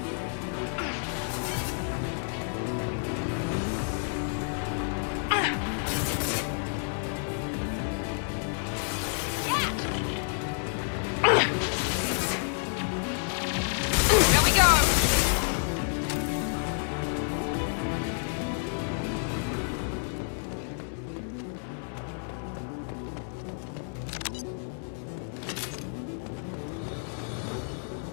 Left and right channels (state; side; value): silent; right; 57 dB below the other